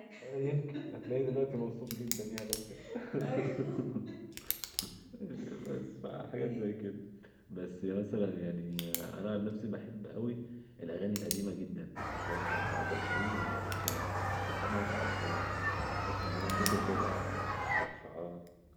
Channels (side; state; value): both; identical; correlation 1.00